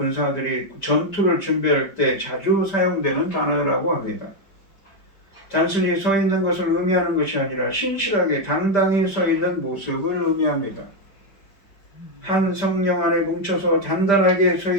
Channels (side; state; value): right; late; 5.1 ms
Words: 전투를 준비할 때 자주 사용되는 단어라고 합니다. 단순히 서 있는 것을 의미하는 것이 아니라 신실하게 당당히 서 있는 모습을 의미합니다. 한 성령 안에 뭉쳐서 단단하게 서